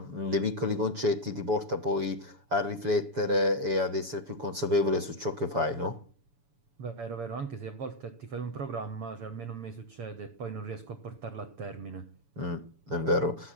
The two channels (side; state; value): left; late; 7.0 ms